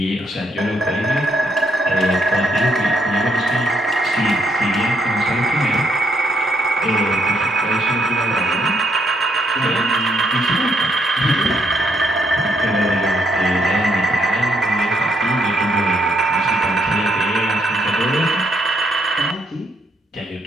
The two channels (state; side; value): normal; both; correlation 0.74